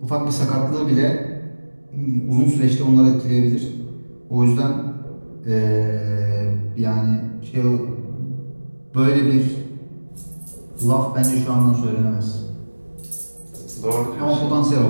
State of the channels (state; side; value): inverted; both; correlation -1.00